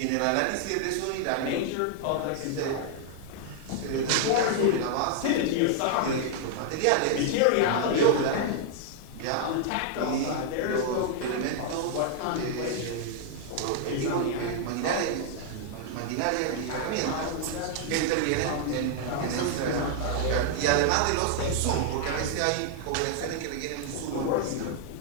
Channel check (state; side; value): different; both; correlation 0.00